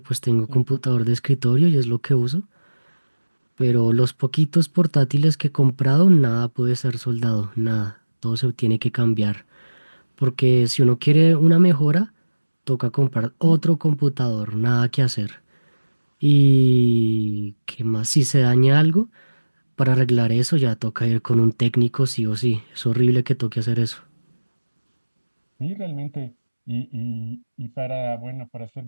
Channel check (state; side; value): inverted; both; correlation -1.00